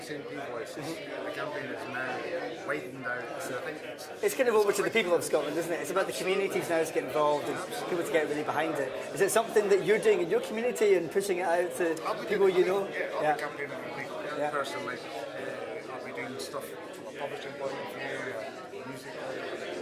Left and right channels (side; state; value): both; identical; correlation 1.00